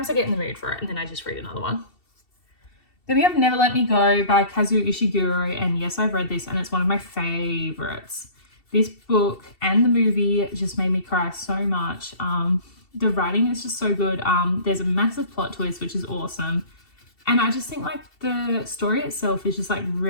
I get in the mood for it and then I just read another one. Then we have Never Let Me Go by Kazuo Ishiguro, and yes, I've read this and it's one of my favorites. This book and the movie just made me cry so much. The writing is just so good. There's a massive plot twist, which is awesome. And I just think like the story itself is just like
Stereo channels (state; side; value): late; right; 2.7 ms